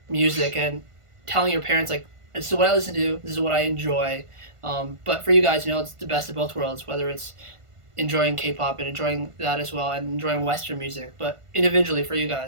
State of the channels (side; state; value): left; late; 1.5 ms